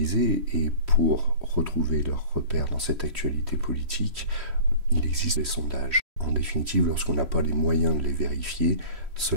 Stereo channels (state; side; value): late; left; 3.1 ms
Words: et pour retrouver leurs repères dans cette actualité politique, il existe des sondages. En définitive, lorsqu'on n'a pas les moyens de les vérifier,